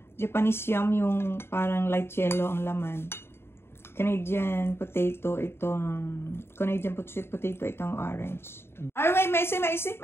Japanese yam yung parang light yellow ang laman. Canadian potato itong sweet potato itong orange. Ay, wait, Macy.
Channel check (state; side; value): late; right; 0.12 ms